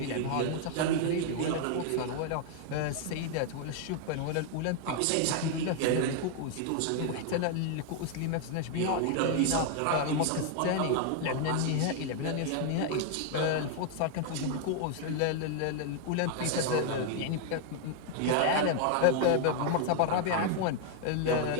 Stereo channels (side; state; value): both; different; correlation 0.00